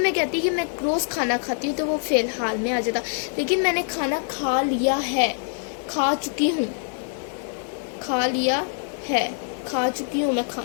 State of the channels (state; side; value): silent; right; digital silence